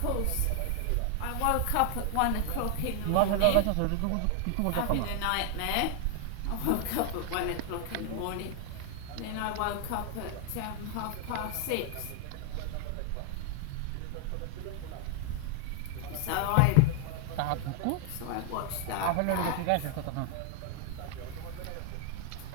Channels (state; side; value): different; both; correlation 0.00